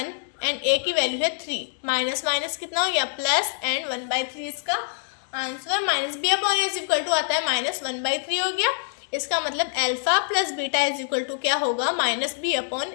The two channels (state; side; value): silent; right; digital silence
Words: एंड a की वैल्यू है 3। माइनस माइनस कितना हो गया प्लस, एंड 1/3 इसका answer. -b upon a is equal to आता है -1/3 हो गया। इसका मतलब alpha plus beta is equal to क्या होगा -b अपॉन